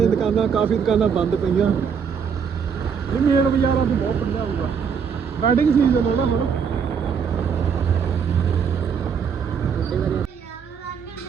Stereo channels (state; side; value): quieter; left; 6.7 dB